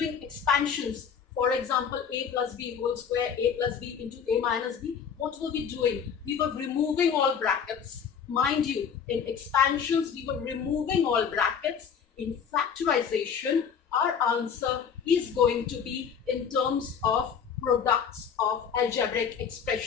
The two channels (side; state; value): right; quieter; 7.1 dB